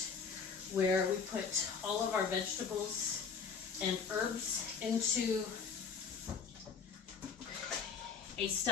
where we put all of our vegetables and herbs into a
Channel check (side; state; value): right; quieter; 5.9 dB